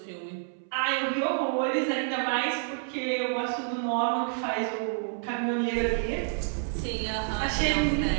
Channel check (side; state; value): left; silent; 59 dB below the other